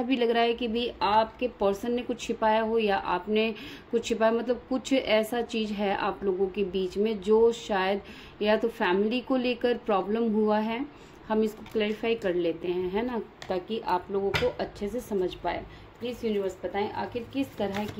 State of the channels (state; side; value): identical; both; correlation 1.00